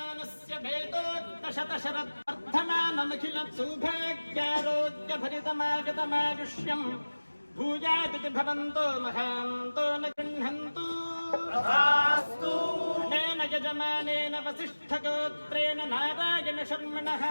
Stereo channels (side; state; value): both; inverted; correlation -1.00